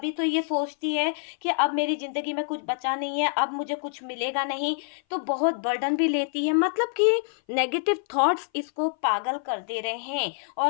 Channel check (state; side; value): silent; right; 58 dB below the other